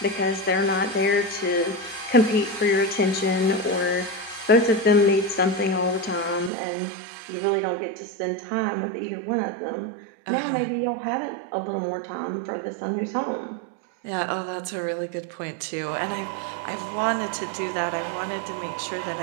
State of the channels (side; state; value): left; drops out; at 6.5 s